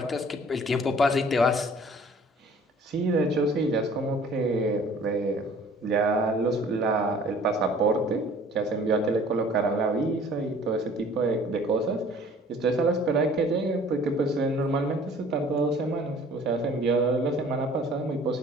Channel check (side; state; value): both; normal; correlation 0.51